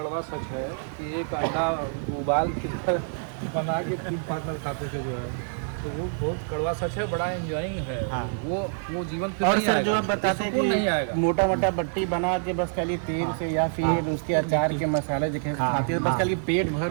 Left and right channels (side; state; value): left; silent; 60 dB below the other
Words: सच है कि एक अंडा उबाल के बना के 3 पार्टनर खाते थे जो है, तो वो बहुत कड़वा सच है, बड़ा एंजॉइंग है। हाँ। वो जीवन फिर और नहीं सर आएगा, जो आप बताते हैं नहीं आएगा। कि मोटा मोटा बट्टी बना के बस खाली तेल से या फिर उसके अचार के मसाले जो खाते हैं बस खाली पेट